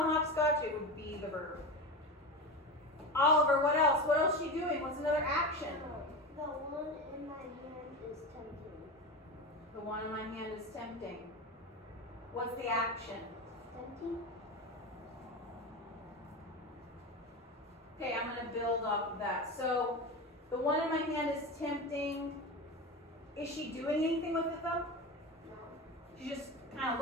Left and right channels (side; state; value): both; normal; correlation 0.24